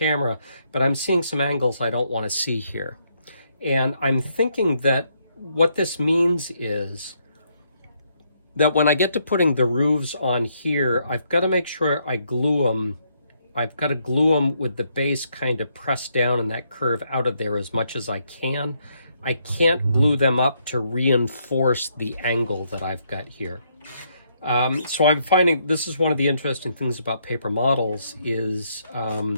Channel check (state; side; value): inverted; both; correlation -0.74